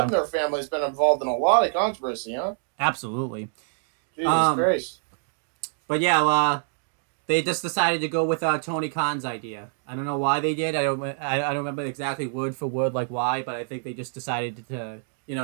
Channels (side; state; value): left; silent; digital silence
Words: family's been involved in a lot of controversy, huh? Absolutely. Jesus Christ. But yeah, they just decided to go with Tony Khan's idea. I don't know why they did. I don't remember exactly word for word like why, but I think they just decided to. It